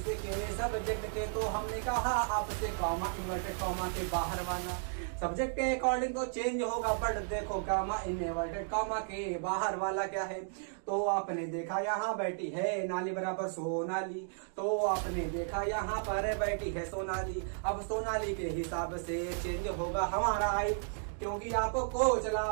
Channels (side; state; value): left; silent; digital silence